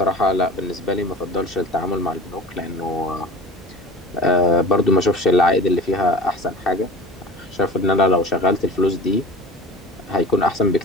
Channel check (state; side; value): normal; both; correlation 0.36